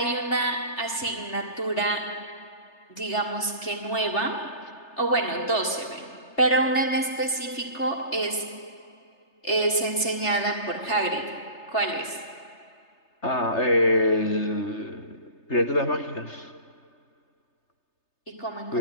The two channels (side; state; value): right; late; 3.3 ms